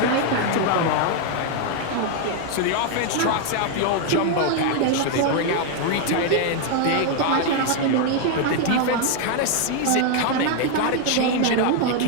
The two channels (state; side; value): different; both; correlation 0.00